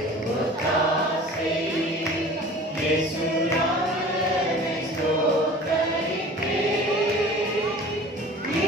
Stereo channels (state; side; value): normal; both; correlation 0.42